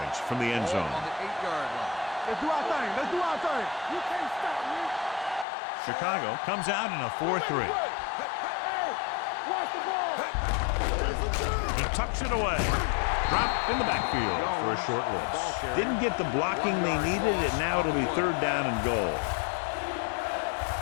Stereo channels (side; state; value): right; drops out; at 5.5 s